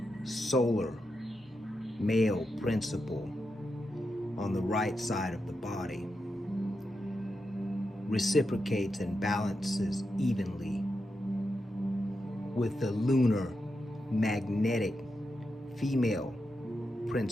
solar, male principle on the right side of the body reciprocates and balances evenly with the lunar magnetic female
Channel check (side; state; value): both; normal; correlation 0.87